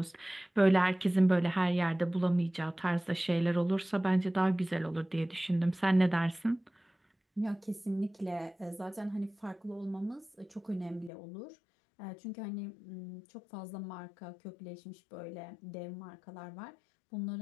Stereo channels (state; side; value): drops out; right; at 11.1 s